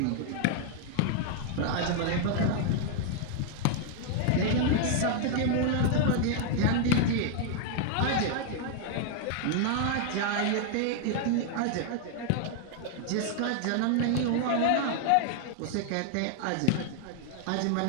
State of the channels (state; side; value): different; both; correlation 0.00